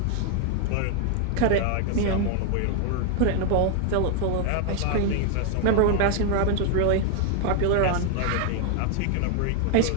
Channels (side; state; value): both; different; correlation 0.00